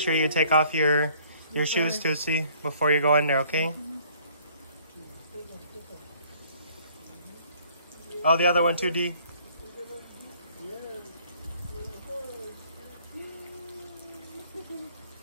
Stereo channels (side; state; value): both; inverted; correlation -0.58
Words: you take off your shoes, Tusi, before you go in there, okay? Oh, the other one too, Dee.